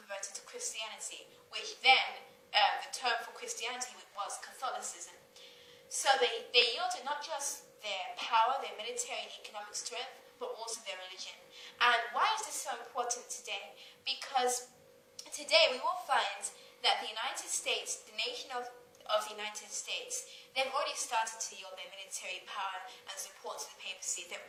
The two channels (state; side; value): identical; both; correlation 1.00